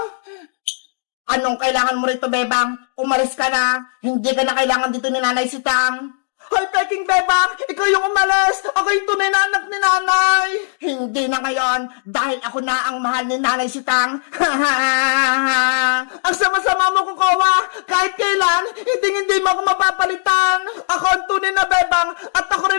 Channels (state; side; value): silent; right; digital silence